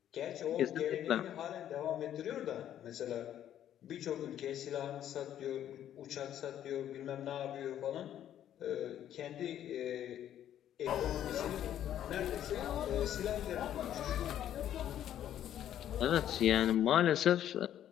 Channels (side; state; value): right; quieter; 11.0 dB